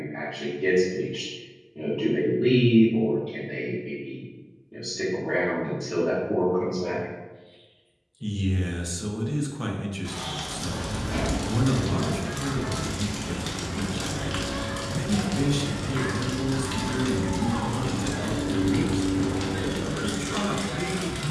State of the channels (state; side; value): identical; both; correlation 1.00